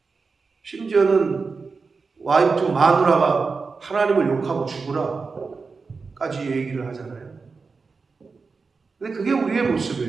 심지어는 와이프 마누라가 하나님을 욕하고 죽으라 까지 얘기를 하잖아요. 근데 그게 우리의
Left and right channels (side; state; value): left; quieter; 4.6 dB